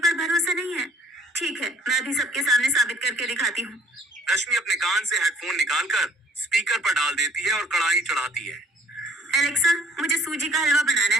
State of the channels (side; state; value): both; normal; correlation 0.57